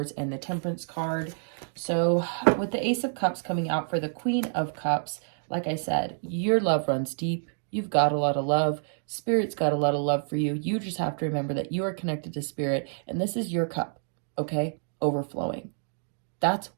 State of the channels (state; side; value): silent; left; digital silence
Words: and the Temperance card. So, with the Ace of Cups coming out for the Queen of Cups, like I said, your love runs deep. You've got a lot of love. Spirit's got a lot of love for you. You just have to remember that you are connected to Spirit, and this is your cup, okay? Overflowing. That's